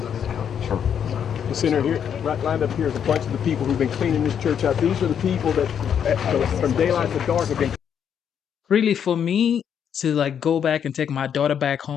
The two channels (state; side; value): quieter; right; 8.3 dB